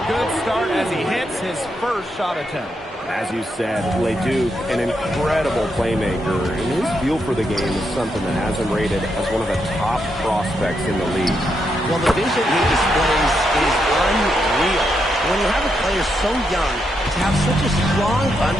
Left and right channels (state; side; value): normal; both; correlation 0.81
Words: good start as he hits his first shot attempt. As you said, Leduc, an incredible playmaker, and his feel for the game is something that has him rated as one of the top prospects in the league. Well, the vision he displays is unreal. When you have a player so young, to have such a strong